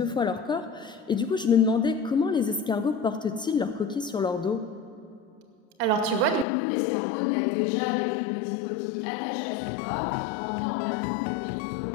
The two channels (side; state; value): right; drops out; at 6.5 s